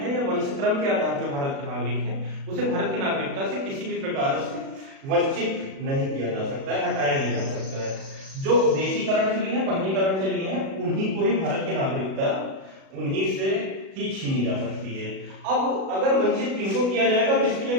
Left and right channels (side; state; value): left; late; 37 ms